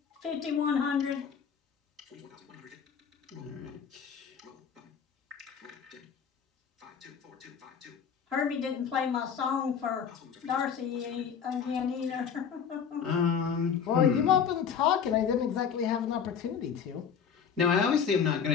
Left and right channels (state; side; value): quieter; right; 7.2 dB